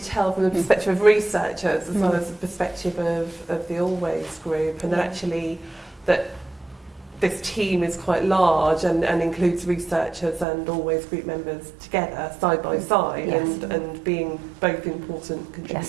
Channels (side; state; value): left; drops out; at 10.5 s